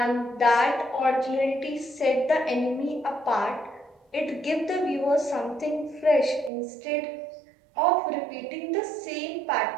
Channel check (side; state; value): left; drops out; at 6.5 s